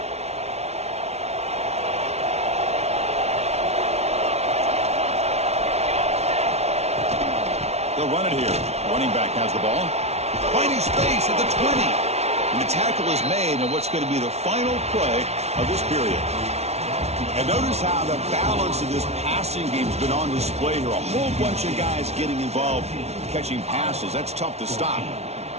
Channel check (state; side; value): late; left; 0.31 ms